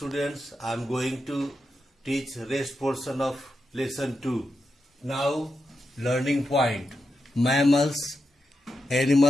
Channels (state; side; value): normal; both; correlation 0.87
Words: I am going to teach rest portion of lesson 2. Now, learning point. Mammals,